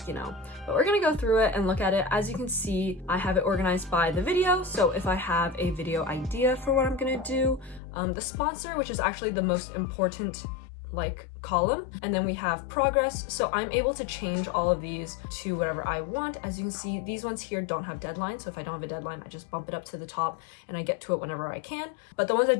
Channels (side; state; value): right; drops out; at 7.8 s